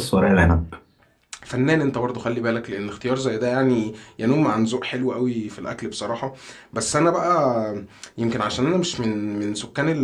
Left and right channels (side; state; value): both; identical; correlation 1.00